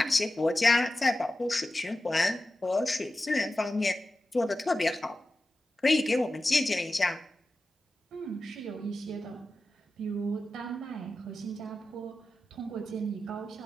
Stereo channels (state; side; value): normal; both; correlation 0.93